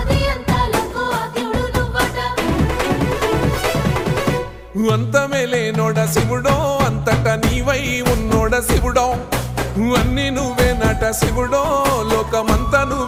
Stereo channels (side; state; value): both; identical; correlation 1.00